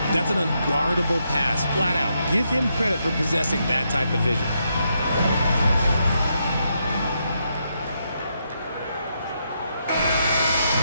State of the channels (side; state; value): both; inverted; correlation -0.80